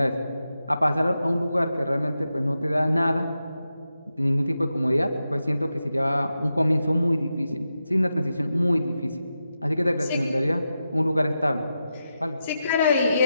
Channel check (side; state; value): both; inverted; correlation -0.89